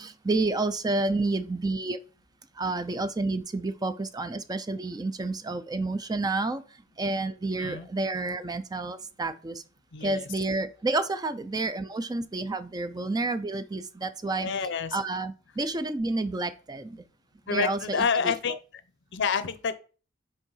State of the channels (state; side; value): normal; both; correlation 0.36